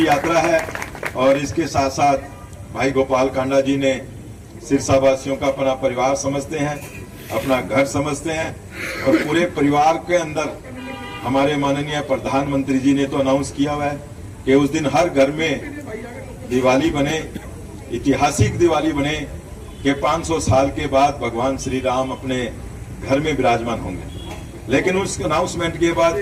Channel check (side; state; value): both; identical; correlation 1.00